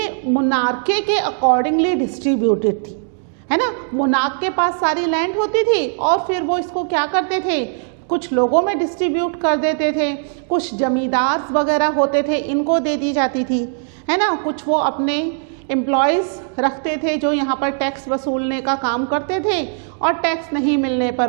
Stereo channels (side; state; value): left; silent; digital silence